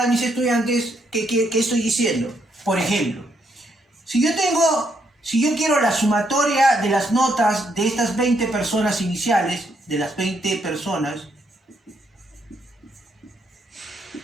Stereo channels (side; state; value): both; normal; correlation 0.75